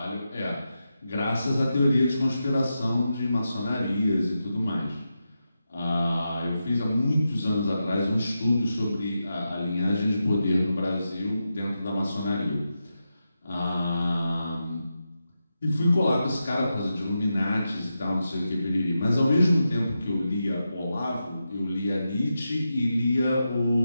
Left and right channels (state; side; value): inverted; both; correlation -0.89